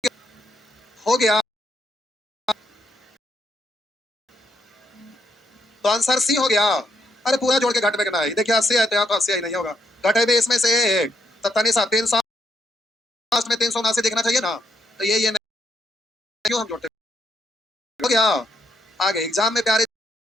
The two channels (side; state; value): both; normal; correlation 0.75